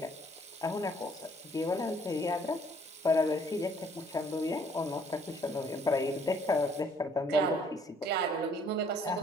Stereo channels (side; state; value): both; normal; correlation 0.62